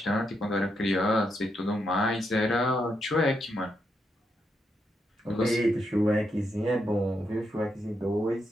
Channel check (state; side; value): normal; both; correlation 0.81